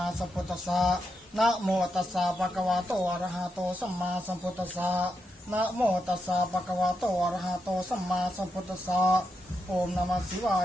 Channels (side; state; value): both; normal; correlation 0.84